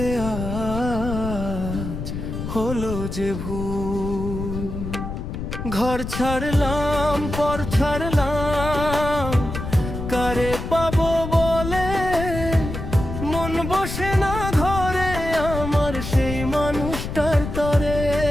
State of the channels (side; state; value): left; noise; rumble, 6 dB below the sound